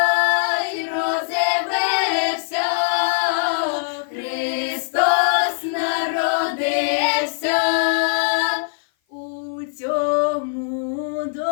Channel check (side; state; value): right; silent; 56 dB below the other